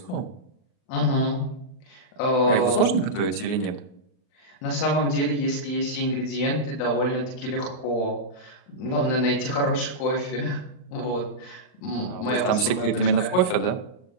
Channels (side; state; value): right; late; 38 ms